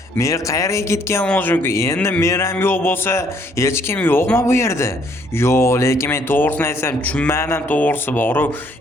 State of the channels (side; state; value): both; normal; correlation 0.66